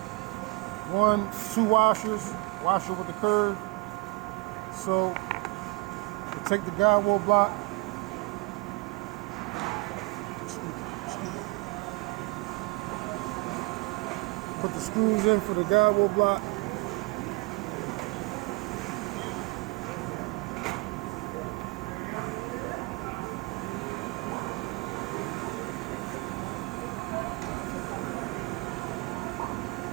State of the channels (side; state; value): left; quieter; 26.0 dB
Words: 1, 2 washers, washer with the curve. So you take the guide wheel block, put the screws in for the guide wheel block.